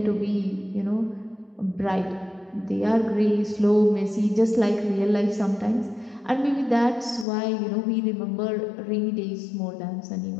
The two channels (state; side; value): drops out; right; at 7.2 s